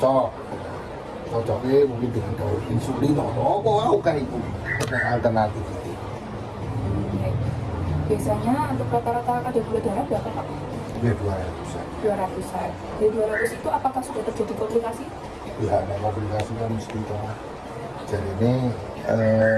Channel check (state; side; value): identical; both; correlation 1.00